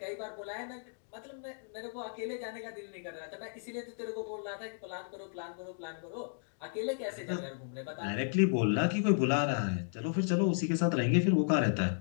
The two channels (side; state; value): right; silent; digital silence